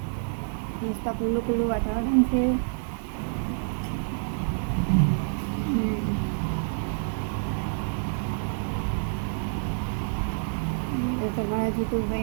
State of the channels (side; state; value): left; silent; 57 dB below the other